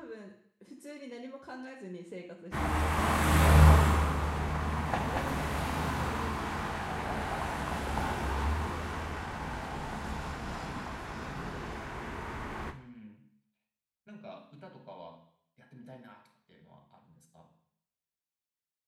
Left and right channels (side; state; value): both; identical; correlation 1.00